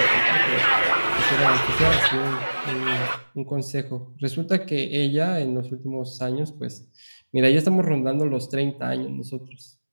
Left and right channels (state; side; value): inverted; both; correlation -1.00